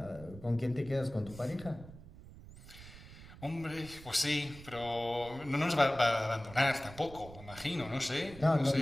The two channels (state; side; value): noise; right; rumble, 17 dB below the sound